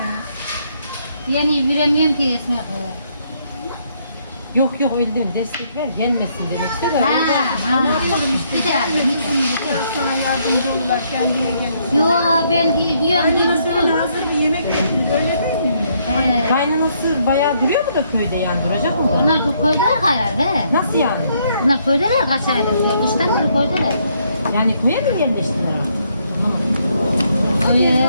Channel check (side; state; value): both; inverted; correlation -0.71